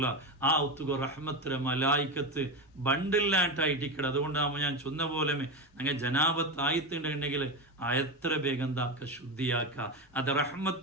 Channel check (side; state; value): both; normal; correlation 0.17